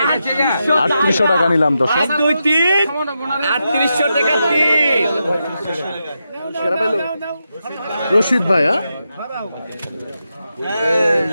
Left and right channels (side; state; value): both; inverted; correlation -0.87